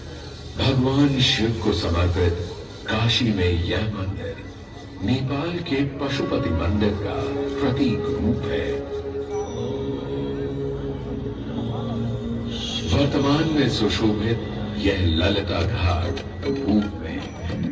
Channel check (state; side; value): identical; both; correlation 1.00